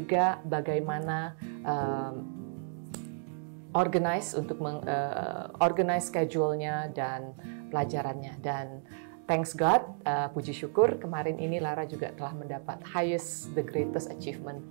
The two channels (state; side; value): silent; left; digital silence